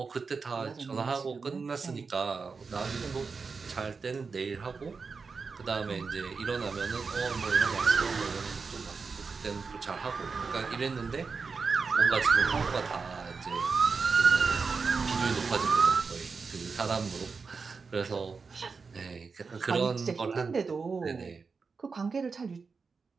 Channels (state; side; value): quieter; left; 4.9 dB